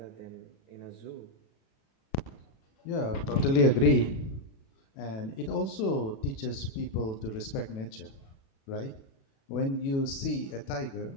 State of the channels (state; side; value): late; right; 36 ms